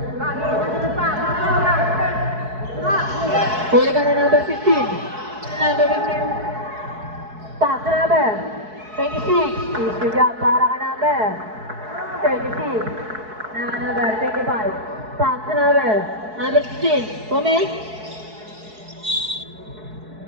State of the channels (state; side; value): late; left; 4.7 ms